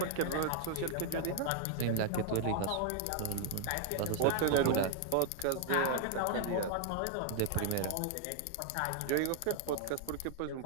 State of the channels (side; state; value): both; different; correlation 0.00